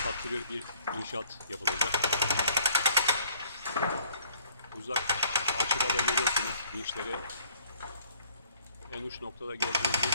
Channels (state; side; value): inverted; both; correlation -0.60